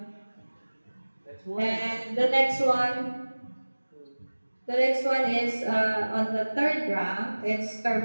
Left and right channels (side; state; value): both; inverted; correlation -1.00